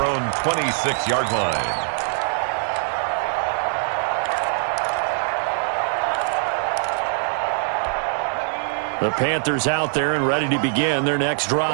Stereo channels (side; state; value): left; silent; digital silence